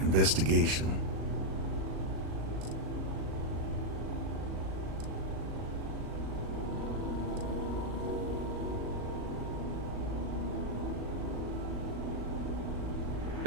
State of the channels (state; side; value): late; left; 37 ms